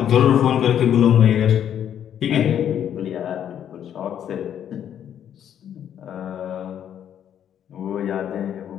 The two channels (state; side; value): quieter; right; 9.6 dB